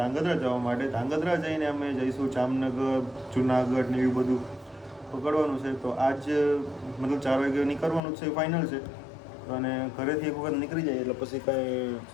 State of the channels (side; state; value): right; drops out; at 8.0 s